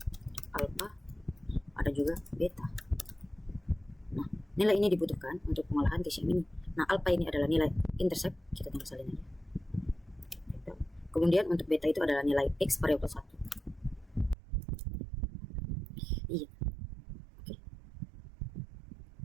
alpha, ada juga beta. Nah, nilai ini dibutuhkan untuk pengolahan TCM ini. Nah, alpha ini adalah nilai intercept, kita tinggal salin aja. Kemudian untuk beta itu adalah nilai X variabel 1. Iya. Oke.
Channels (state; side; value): drops out; left; at 14.4 s